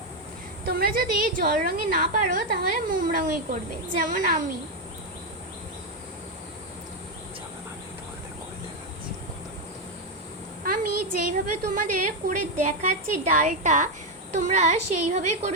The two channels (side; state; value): both; normal; correlation 0.05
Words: তোমরা যদি জল রঙে না পারো তাহলে মোম রঙই করবে, যেমন আমি। আমি যেইভাবে তোমাদের করে দেখাচ্ছি ডালটা, তোমরা সেইভাবেই